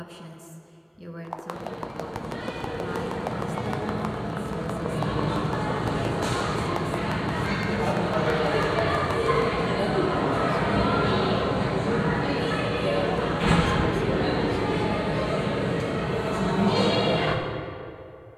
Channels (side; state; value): both; identical; correlation 1.00